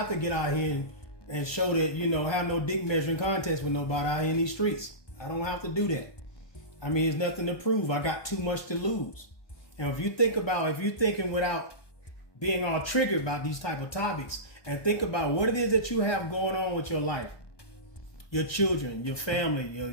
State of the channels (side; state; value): right; late; 1.2 ms